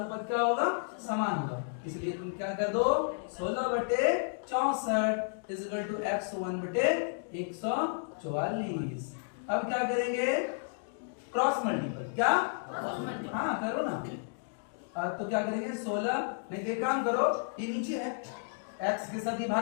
क्या होगा, समान होगा। इसलिए तुम क्या कर दो, 16/64 इक्वल टू x1/144। अब क्या करेंगे, क्रॉस मल्टीपल। क्या, हाँ करो ना। तो क्या करेंगे, 16, नहीं तो एक काम करो, ये नीचे है, x के साथ ये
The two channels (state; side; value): silent; right; digital silence